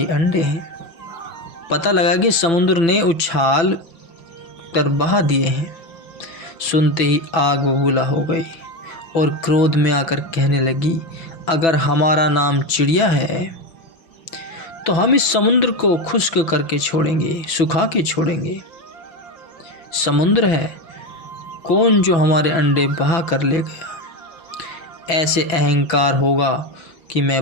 अंडे हैं। पता लगा कि समुद्र ने उछाल कर बहा दिए हैं। सुनते ही आग बबूला हो गई और क्रोध में आकर कहने लगी, अगर हमारा नाम चिड़िया है तो हम इस समुद्र को खुश्क करके छोड़ेंगे, सुखा के छोड़ेंगे। समुद्र है कौन जो हमारे अंडे बहा कर ले गया। ऐसे अहंकार होगा कि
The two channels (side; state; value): right; late; 6.0 ms